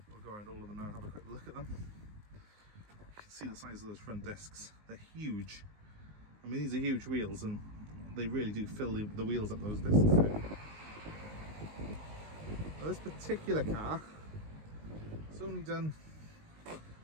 go around all of them now and have a quick look at them. You can see the size of those front discs. They're huge. I mean, these are huge wheels and they really do fill the wheels up, those discs. Now, this particular car, it's only done, well,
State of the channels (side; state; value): left; late; 19 ms